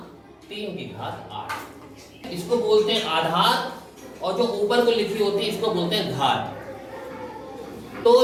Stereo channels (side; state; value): both; identical; correlation 1.00